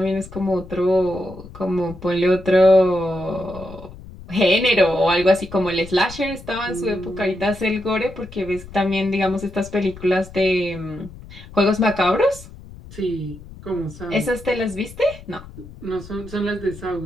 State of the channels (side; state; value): left; noise; rumble, 16 dB below the sound